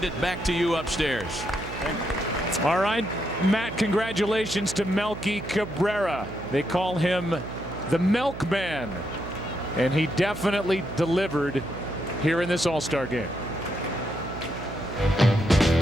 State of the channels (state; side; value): noise; right; hum, 10 dB below the sound